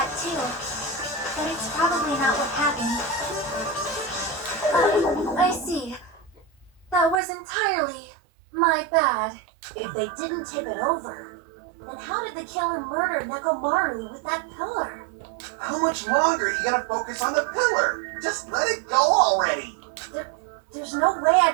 too. But it's probably not what happened. I see. That was entirely my bad. If they didn't tip it over, then how did the killer murder Nekomaru with that pillar? How much longer are you gonna focus on the pillar? Just let it go already. There's no way I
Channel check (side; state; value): left; drops out; at 7.2 s